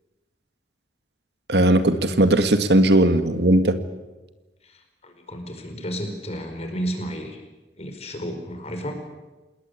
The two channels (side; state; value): both; normal; correlation 0.53